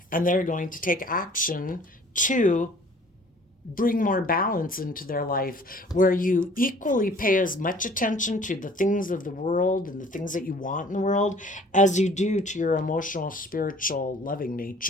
and they're going to take action to bring more balance into their life, where you equally pay as much attention to the things of the world and the things that you want in the world as you do to your emotional, spiritual, loving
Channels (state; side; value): normal; both; correlation 0.52